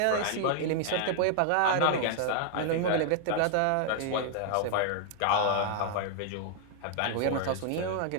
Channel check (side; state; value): both; different; correlation 0.00